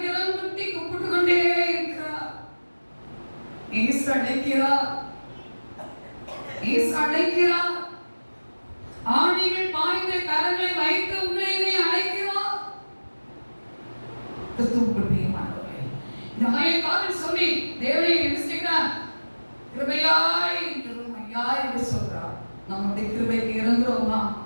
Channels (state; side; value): inverted; both; correlation -1.00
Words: இடம் குட்டி கூப்பிட்டு கொண்டே இருக்கிறார். இயேசு அழைக்கிறார், இயேசு அழைக்கிறார். ஆணிகள் பாய்ந்த கரங்களை வைத்து உங்களை நீ அழைக்கிறார். கிறிஸ்துவுக்குள் பிரியமானவர்களே, இந்த மயக்காவில் சொல்லி தேவனை என்ன செய்கிறார்? கிருபையாய் கிருபையாய் என்று சொல்றார். நம்முடைய கிருபைக்கு இறங்குறோமா?